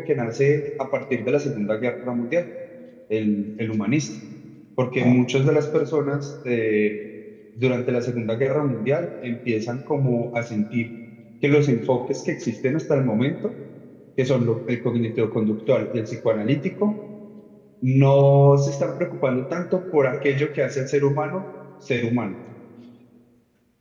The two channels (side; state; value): both; identical; correlation 1.00